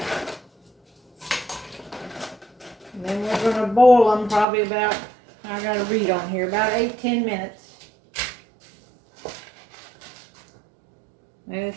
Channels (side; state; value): left; drops out; at 4.5 s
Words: And then we're going to boil them probably about, I got to read on here, about 8-10 minutes.